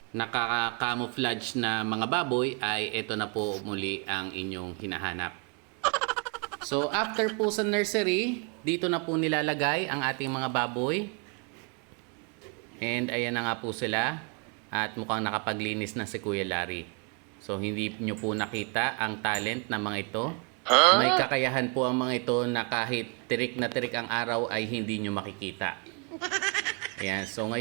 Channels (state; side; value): quieter; left; 36.3 dB